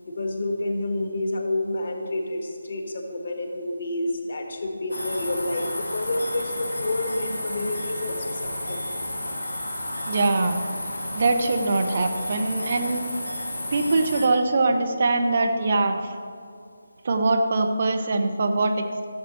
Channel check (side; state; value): both; inverted; correlation -0.88